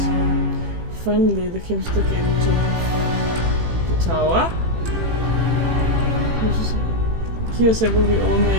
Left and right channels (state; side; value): late; left; 18 ms